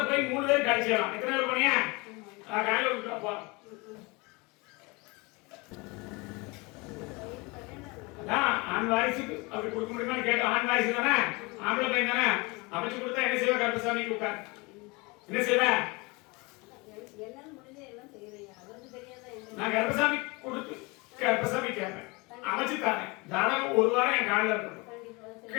போய் 3 பேர் கழிச்சிடலாம். எத்தனை பேர் போனியா? காலையில விட்டுப்போ. ஆண் வாரிசுக்கு அப்படி கொடுக்க முடியுமான்னு கேட்டோம். ஆண் வாரிசு தானே, ஆம்பளை பையன் தானே, அமைச்சு கொடுத்தா என்ன செய்வ? கருப்பசாமிக்கு உட்கார் என்ன செய்வ? நான் கருப்பசாமி கொடுத்து கருப்பசாமி கேட்பேன், அமைச்சு தானேன். ஜாதகம் ஒரு வாரம் என் காலில் இருக்கட்டும்.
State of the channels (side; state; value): right; quieter; 26.5 dB